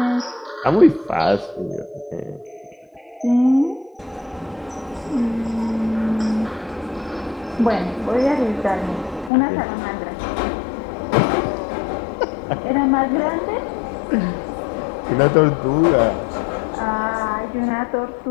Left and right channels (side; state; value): right; drops out; at 9.3 s